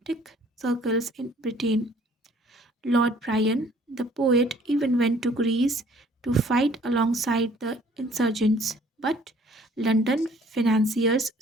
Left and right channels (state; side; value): normal; both; correlation 0.57